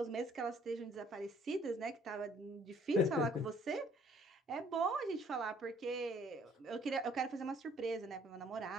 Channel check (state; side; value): normal; both; correlation 0.60